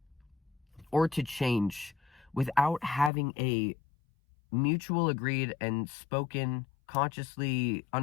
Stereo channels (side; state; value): right; drops out; at 3.1 s